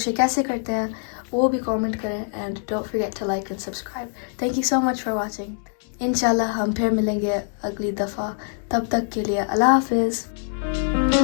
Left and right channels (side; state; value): right; silent; 56 dB below the other